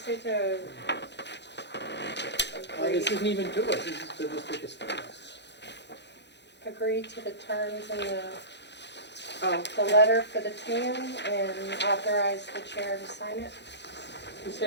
need to This isn't even to us, this is to the thickest thing. agree to the terms in Oh, the letter for the TN and authorize the chair to sign it. This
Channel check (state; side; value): late; right; 0.50 ms